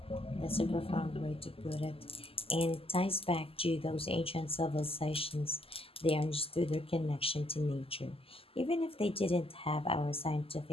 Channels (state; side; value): late; right; 0.27 ms